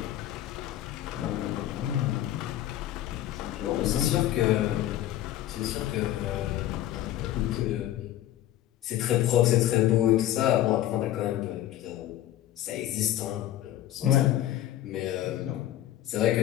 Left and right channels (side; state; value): right; quieter; 13.1 dB